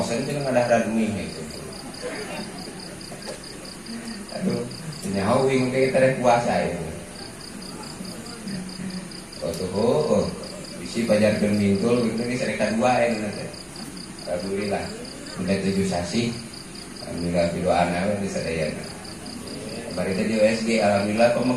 cenah ngadah duit itu. Aduh, nyaho wing teh teh puasa itu. Oh, bisi pajarkeun bingkul kitu geus rek kadua aya teh. Alhamdulillah. Udah 7 sasi. Alhamdulillah pidoana we sadayana. Bari teh di USG alhamdulillah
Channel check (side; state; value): both; identical; correlation 1.00